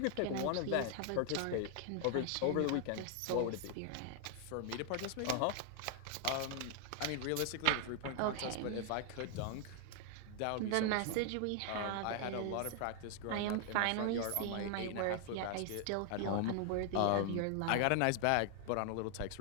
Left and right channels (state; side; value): different; both; correlation 0.00